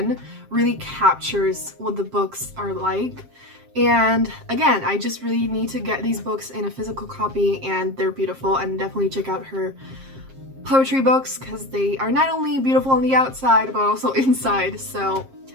really captures what the books are like. And again, I just really need to get these books in a physical copy, and they're beautiful, and definitely check out her poetry books because they are not only beautiful on the outside but also inside. So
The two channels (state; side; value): late; left; 7.5 ms